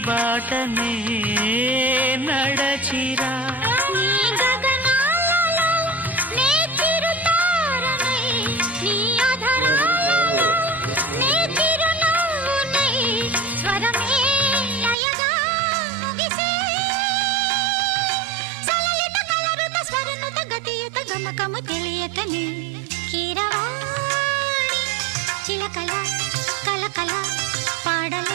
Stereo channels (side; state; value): left; drops out; at 15.0 s